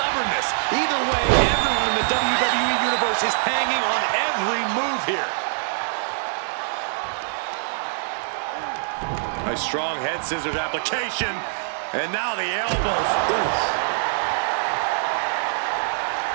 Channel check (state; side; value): silent; left; digital silence